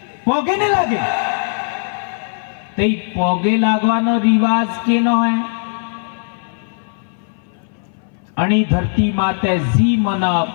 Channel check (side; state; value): right; silent; 61 dB below the other